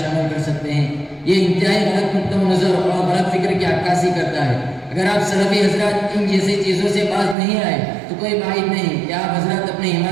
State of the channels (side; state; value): left; drops out; at 7.4 s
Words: عمل کر سکتے ہیں۔ یہ انتہائی غلط نقطہ نظر اور غلط فکر کی عکاسی کرتا ہے۔ اگر آپ سلفی حضرات ان جیسی چیزوں سے باز نہیں آئے تو کوئی بعید نہیں کہ آپ حضرات اپنے